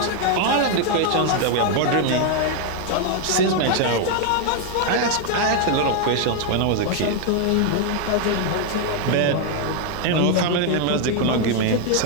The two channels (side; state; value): both; different; correlation 0.00